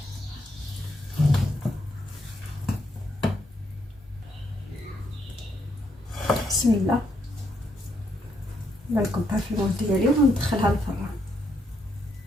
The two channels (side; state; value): both; normal; correlation 0.76